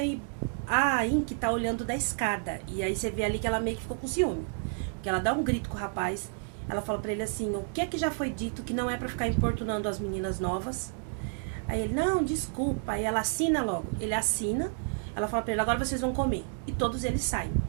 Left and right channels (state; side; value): silent; left; 58 dB below the other